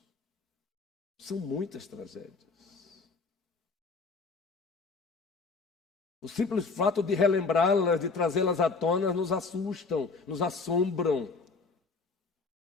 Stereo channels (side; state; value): right; quieter; 4.3 dB